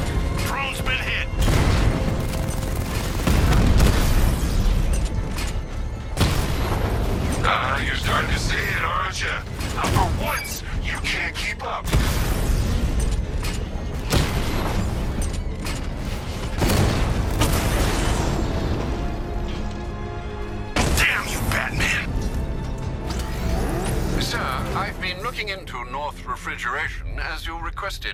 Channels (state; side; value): identical; both; correlation 1.00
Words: Drone's been hit! You're starting to see it, aren't you? Now, for once, you can't keep up. Damn you, Batman! Sir, I've been looking into North Refrigeration as you